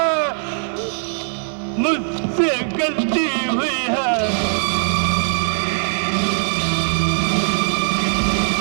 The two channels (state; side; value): silent; left; digital silence